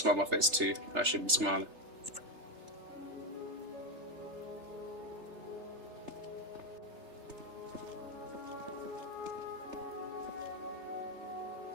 on my face too. I should be smiling.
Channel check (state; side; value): late; left; 3.3 ms